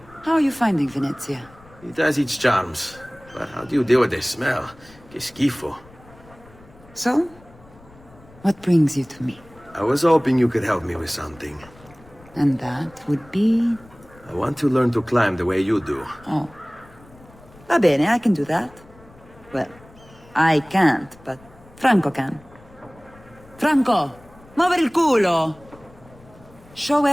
How are you finding Venezia? It has its charms. But how do you deal with the smell? Que schifo. So? What brings you to me? I was hoping you could help me with something. And that would be... I want to learn to climb the way you do. Oh. Va bene, I can do that. Well, I can't, but Franco can. Franco, muovere il culo! Show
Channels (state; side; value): noise; left; rumble, 24 dB below the sound